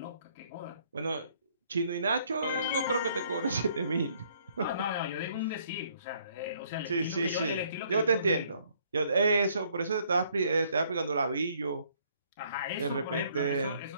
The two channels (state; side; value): inverted; both; correlation -0.65